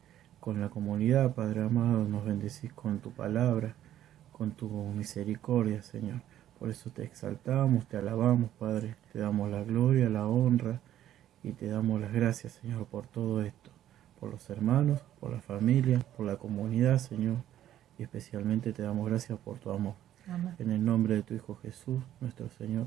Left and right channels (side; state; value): left; quieter; 12.0 dB